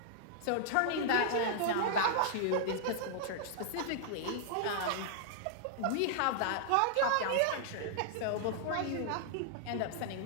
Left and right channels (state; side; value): different; both; correlation -0.01